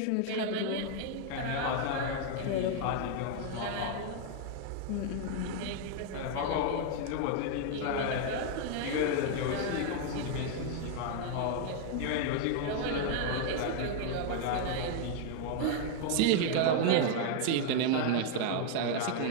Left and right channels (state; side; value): different; both; correlation 0.00